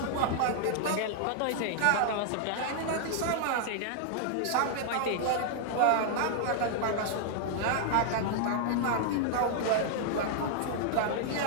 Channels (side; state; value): both; different; correlation -0.01